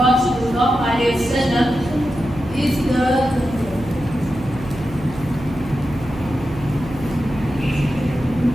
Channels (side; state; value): right; noise; hum, 14 dB below the sound